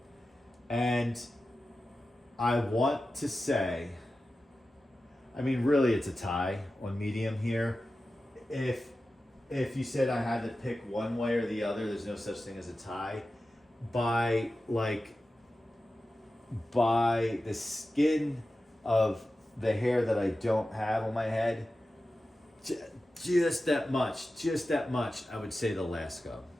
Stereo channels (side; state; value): both; normal; correlation 0.94